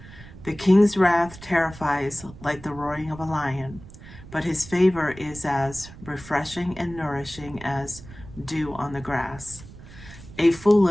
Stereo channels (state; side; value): noise; right; rumble, 17 dB below the sound